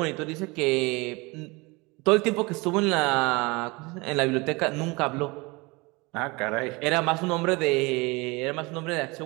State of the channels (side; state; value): left; quieter; 25.6 dB